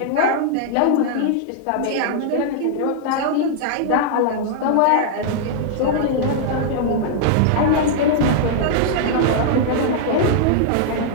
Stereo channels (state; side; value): different; both; correlation -0.01